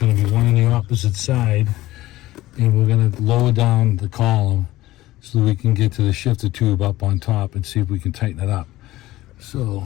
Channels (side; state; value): right; quieter; 16.8 dB